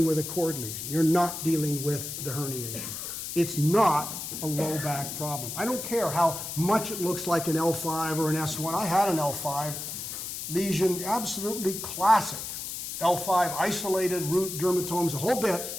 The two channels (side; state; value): left; noise; hiss, 6 dB below the sound